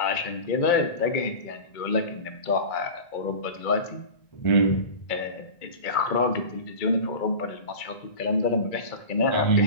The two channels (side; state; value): right; late; 2.2 ms